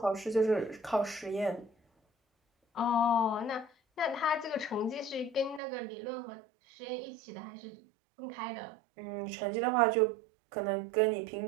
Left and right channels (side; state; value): left; drops out; at 5.6 s